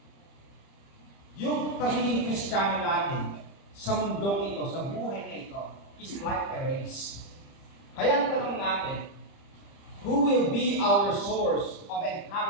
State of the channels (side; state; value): right; late; 30 ms